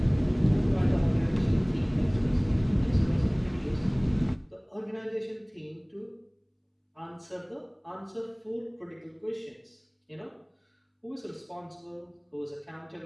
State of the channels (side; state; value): both; identical; correlation 1.00